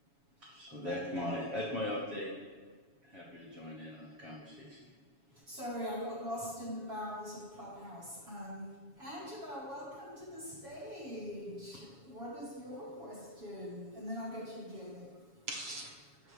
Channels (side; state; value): left; late; 7.2 ms